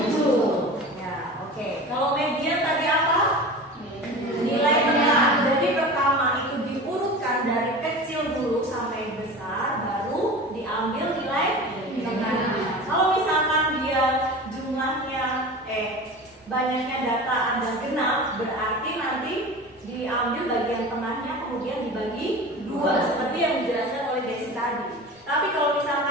Ya, oke. Kalau median tadi apa? Nilai tengah. Jadi pertama itu diurutkan dari kecil dulu sampai besar, baru diambil nilai tengah. Kalau misalkan dia jumlahnya banyaknya data ada genap, berarti nanti diambil bagian tengahnya kemudian dibagi 2 seperti yang dijelaskan oleh Desi tadi. Tapi kalau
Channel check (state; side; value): normal; both; correlation 0.34